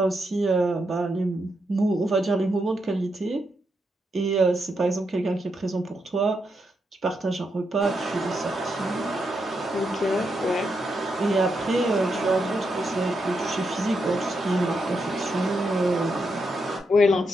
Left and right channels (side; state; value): both; normal; correlation 0.82